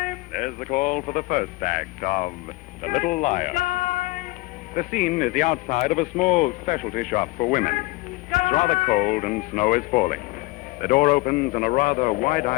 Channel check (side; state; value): right; quieter; 21.9 dB